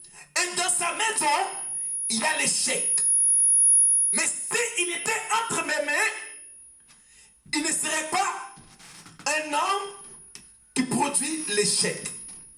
et dans sa maison, il y a l'échec. Mais s'il était entre mes mains, il ne serait pas un homme qui produit l'échec.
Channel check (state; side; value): identical; both; correlation 1.00